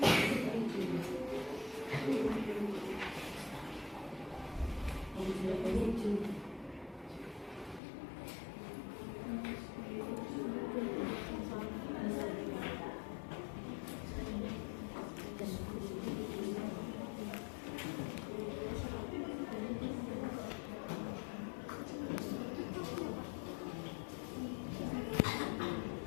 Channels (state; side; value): drops out; right; at 7.8 s